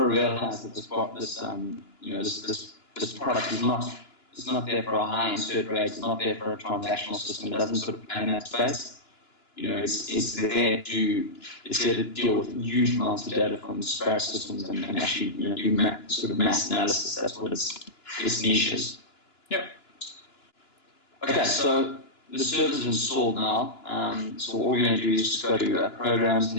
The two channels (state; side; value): late; right; 2.9 ms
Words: realize that this product is not there for a high insert rate. It's not there for a transactional system. It doesn't sort of play in that space. It's there to deal with huge amounts of data from disparate systems and actually do sort of mass analysis. That's what its niche is. Yep. Okay, so the server's installed now. So all we're going to do is just go to programs, and